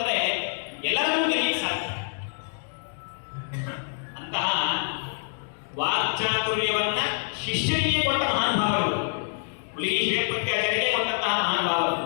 ಎಲ್ಲರನ್ನೂ ಗೆಲ್ಲಿಕ್ಕೆ ಸಾಧ್ಯ. ಅಂತಹ ವಾಕ್ಚಾತುರ್ಯವನ್ನ ಶಿಷ್ಯರಿಗೆ ಕೊಟ್ಟ ಮಹಾನುಭಾವರು, ಹುಲಿಗಿ ಶ್ರೀಪತ್ಯಾಚಾರ್ಯರಿಗೆ ಕೊಟ್ಟಂತಹ ಮಹಾನುಭಾವರು.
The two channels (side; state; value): right; silent; digital silence